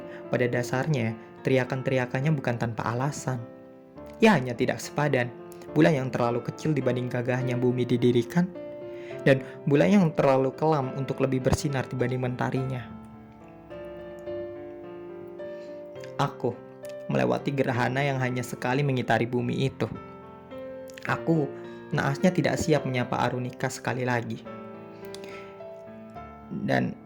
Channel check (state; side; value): identical; both; correlation 1.00